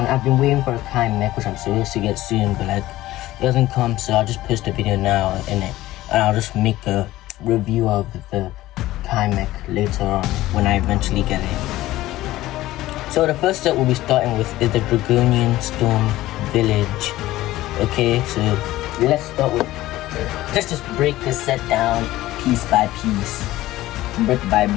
I've been waiting for a kind neck, which I'm supposed to get soon, but it doesn't come, so I'll just post a video now in it, and I'll just make a review of the Kamek later on when I eventually get it. So the first set we'll be starting with is the Dragonian Storm village. Okay, so let's just break this set down piece by piece, brick by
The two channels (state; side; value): quieter; right; 16.3 dB